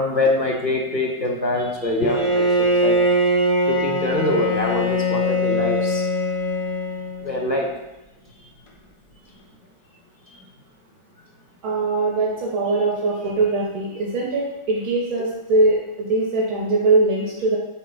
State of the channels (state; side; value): late; left; 1.5 ms